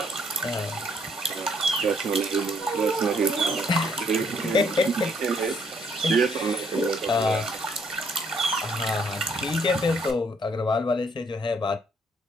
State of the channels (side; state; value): both; normal; correlation 0.68